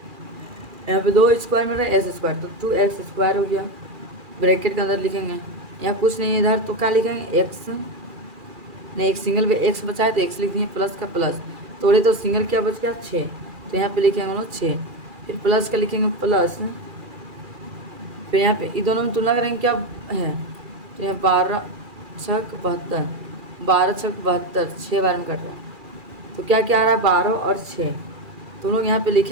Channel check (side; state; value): left; late; 2.4 ms